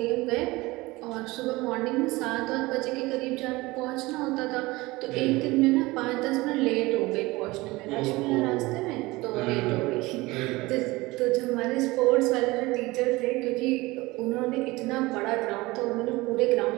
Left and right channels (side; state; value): left; quieter; 21.3 dB